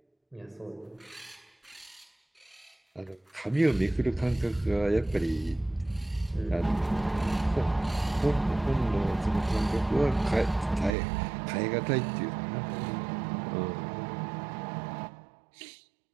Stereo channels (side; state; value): left; drops out; at 11.0 s